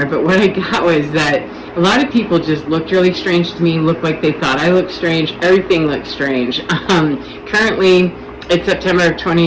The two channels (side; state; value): both; identical; correlation 1.00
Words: but what I got was that a lot of people just looked really strange to me, looked like they thought I looked strange. Everything looked strange. Currently, it's September of